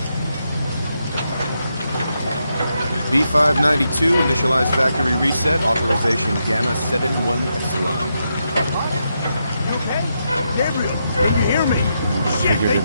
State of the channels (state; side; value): inverted; both; correlation -0.83